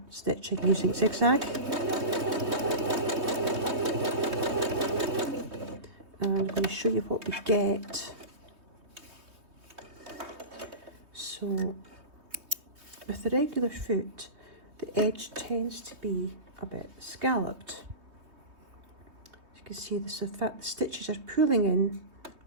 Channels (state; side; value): late; left; 3.2 ms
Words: stitching using zigzag. And I'm going to show you what we get. So with the regular foot, the edge tends to be a bit scalloped. As you can see, the stitches are pulling in